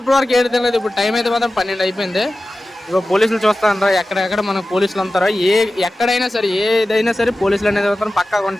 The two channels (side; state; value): both; normal; correlation 0.95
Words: ఇప్పుడు వరకు ఏడు తినలేదు. ఇప్పుడు టైం అయితే మాత్రం 12 అయిపోయింది. ఇగో పోలీసులు చూస్తారంటారా, ఎక్కడెక్కడ మనకు పోలీసులు అంటారా, ఎక్కడైనా సరే ఏదైనా సరే పోలీసులు అనేది మాత్రం పక్కాగా